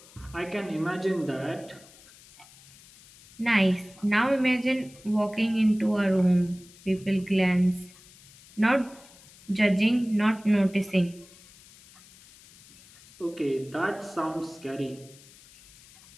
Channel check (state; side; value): noise; left; hiss, 23 dB below the sound